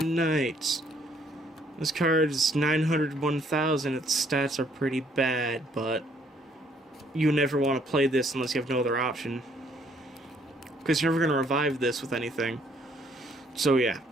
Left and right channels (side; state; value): both; normal; correlation 0.66